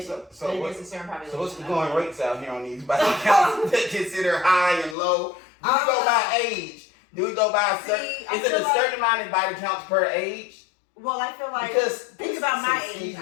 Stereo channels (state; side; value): drops out; right; at 5.0 s